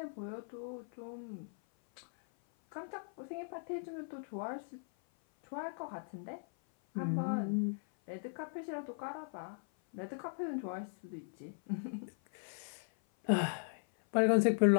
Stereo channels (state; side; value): silent; right; 52 dB below the other